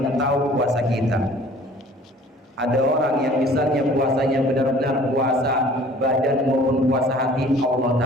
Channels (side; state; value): both; normal; correlation 0.50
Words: tahu puasa kita. Ada orang yang misalnya puasanya benar-benar puasa badan maupun puasa hati, Allah